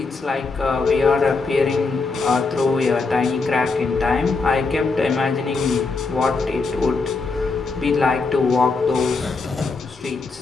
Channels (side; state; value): right; quieter; 4.1 dB